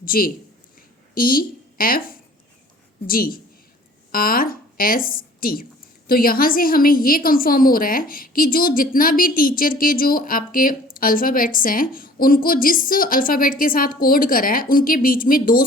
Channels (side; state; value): both; normal; correlation 0.50